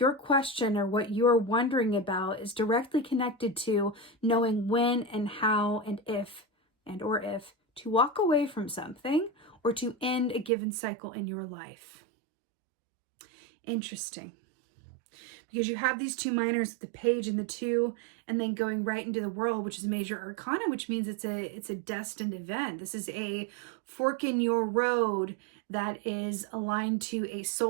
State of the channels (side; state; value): left; drops out; at 10.5 s